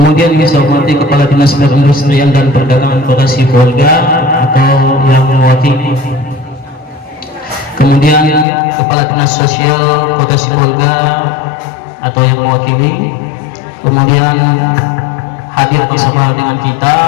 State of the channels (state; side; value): drops out; right; at 8.5 s